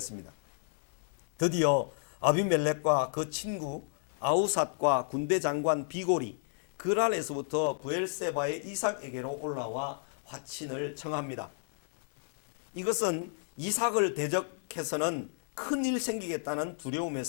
드디어 아비멜렉과 그 친구 아우삿과 군대 장관 비골이 그랄에서부터 브엘세바의 이삭에게로 올라와 화친을 청합니다. 이것은 이삭을 대적해서는 큰일 생기겠다는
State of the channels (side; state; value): right; silent; digital silence